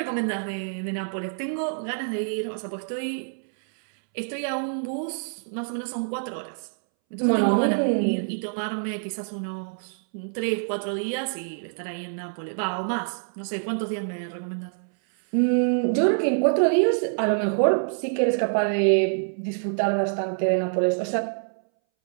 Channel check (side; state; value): left; silent; 61 dB below the other